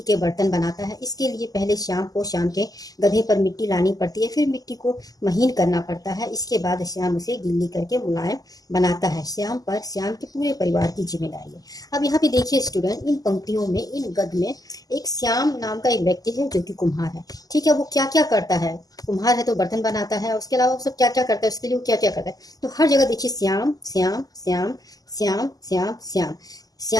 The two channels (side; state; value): right; late; 0.18 ms